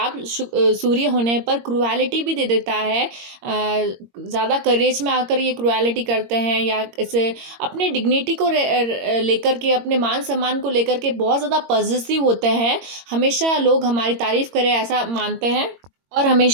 सूर्य होने पर क्रुएलिटी भी दे देता है। ज़्यादा करेज में आकर ये क्रुएलिटी करते हैं या इसे अपने डिग्निटी को लेकर के, अपने मान सम्मान को लेकर के बहुत ज़्यादा पॉजिटिव होते हैं। हमेशा लोग हमारी तारीफ करें ऐसा मानते हैं और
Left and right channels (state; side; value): late; left; 22 ms